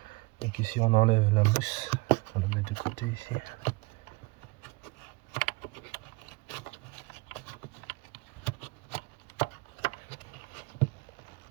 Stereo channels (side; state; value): left; quieter; 24.7 dB